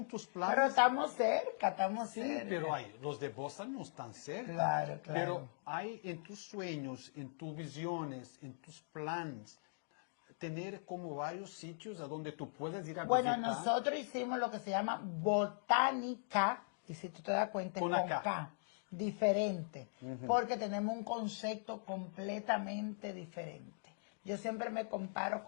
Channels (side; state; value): right; silent; digital silence